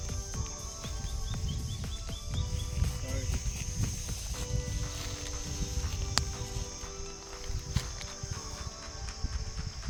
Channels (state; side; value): identical; both; correlation 1.00